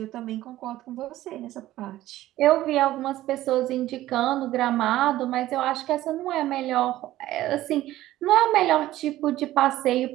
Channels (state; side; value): quieter; left; 15.0 dB